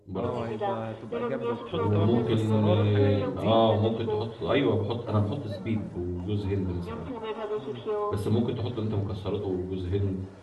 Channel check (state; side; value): identical; both; correlation 1.00